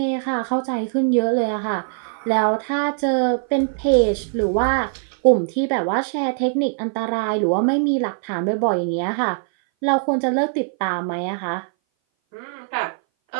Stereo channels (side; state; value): left; silent; 59 dB below the other